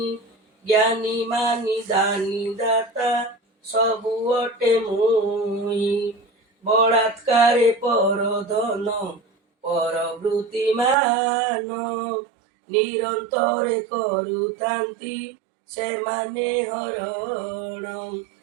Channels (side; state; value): left; drops out; at 11.0 s